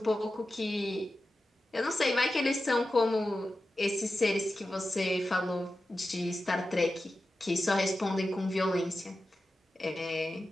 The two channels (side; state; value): both; normal; correlation 0.93